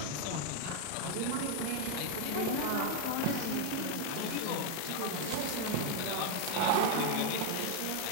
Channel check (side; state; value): both; different; correlation 0.01